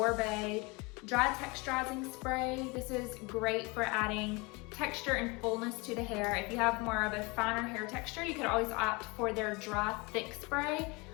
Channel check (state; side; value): quieter; right; 26.9 dB